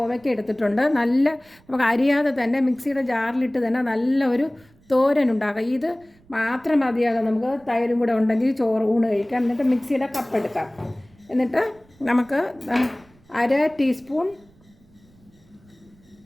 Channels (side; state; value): right; noise; rumble, 30 dB below the sound